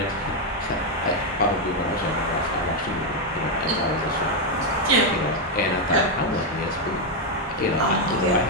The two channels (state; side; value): normal; both; correlation 0.03